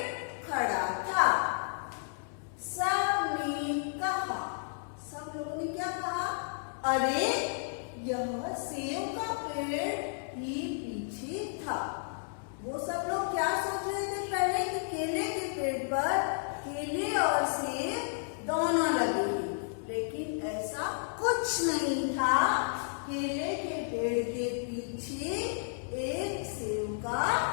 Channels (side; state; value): right; silent; 56 dB below the other